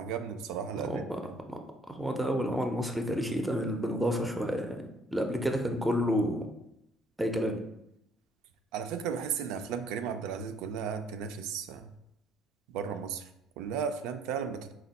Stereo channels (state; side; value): normal; both; correlation 0.62